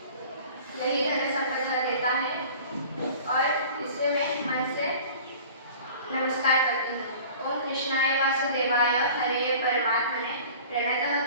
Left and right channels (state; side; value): inverted; both; correlation -0.43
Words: यही धन संपदा देता है और इसे मैं मन से नमस्कार करती हूँ। ओम कृष्णाय वासुदेवाय हरे परमात्मने प्रणतः